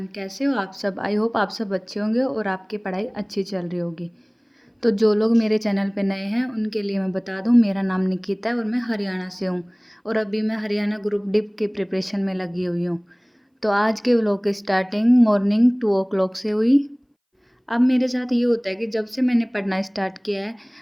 कैसे हो आप सब। आई होप आप सब अच्छे होंगे और आपकी पढ़ाई अच्छी चल रही होगी। तो जो लोग मेरे चैनल पे नए हैं उनके लिए मैं बता दूं, मेरा नाम निकिता है और मैं हरियाणा से हूं। और अभी मैं हरियाणा ग्रुप डी की प्रिपरेशन में लगी हुई हूं। तो आज के व्लॉग की स्टार्टिंग मॉर्निंग 2 o'clock से हुई। अब मेरे साथ ये होता है कि जब से मैंने पढ़ना स्टार्ट किया है,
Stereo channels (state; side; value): identical; both; correlation 1.00